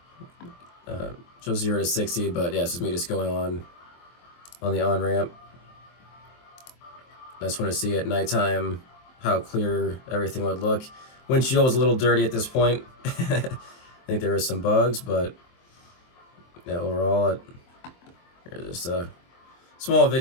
Shows 0 to 60, but yeah, this is me just going on the Onramp. I just want to see at nighttime how clear everything would look. Windshield was a little dirty at this point. I think there was some bugs, but yeah, overall, here's just a small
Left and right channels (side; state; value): right; late; 23 ms